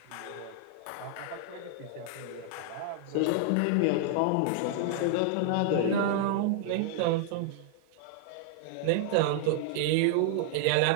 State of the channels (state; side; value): different; both; correlation 0.00